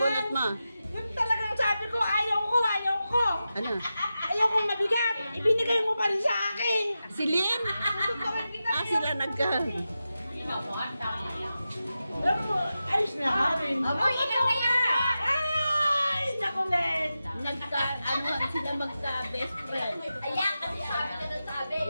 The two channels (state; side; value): inverted; both; correlation -0.92